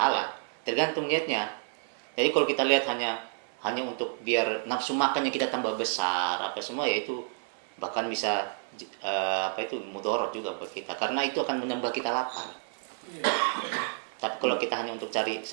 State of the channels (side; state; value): left; silent; 58 dB below the other